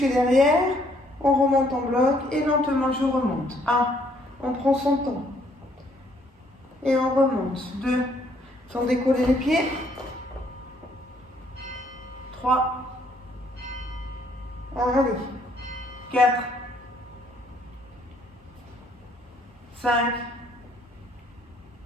derrière. On remonte en bloc et lentement je remonte. 1, on prend son temps. Et on remonte. 2, sans décoller les pieds. 3, allez. 4, 5,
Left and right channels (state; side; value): normal; both; correlation 0.66